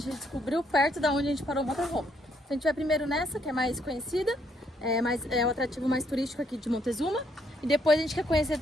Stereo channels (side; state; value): both; normal; correlation 0.71